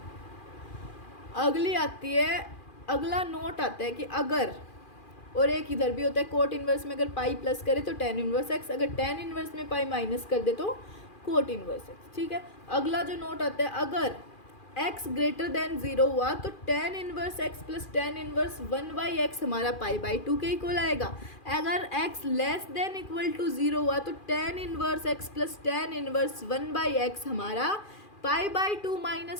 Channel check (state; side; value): late; right; 2.4 ms